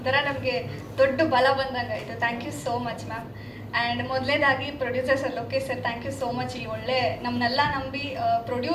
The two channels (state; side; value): identical; both; correlation 1.00